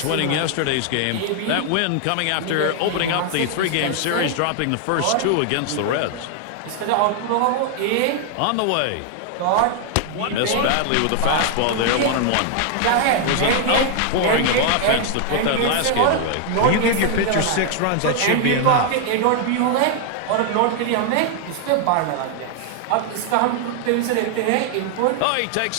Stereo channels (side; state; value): both; different; correlation 0.00